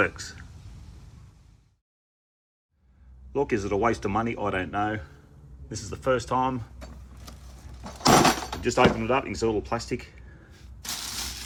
Look, is it a waste of money? I don't know. This is the first time. Just open it up, you can see a little plastic.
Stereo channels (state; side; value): identical; both; correlation 1.00